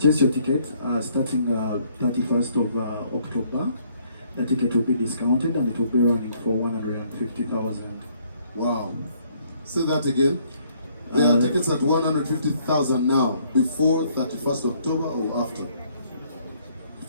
your ticket, starting 31st of October, the ticket will be discounted and it will be running for 150,000. Wow. Say that again. There are tickets at 150,000 now, before 31st October or after?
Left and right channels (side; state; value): both; inverted; correlation -0.66